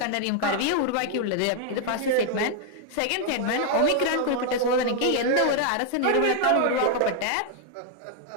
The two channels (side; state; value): both; different; correlation 0.00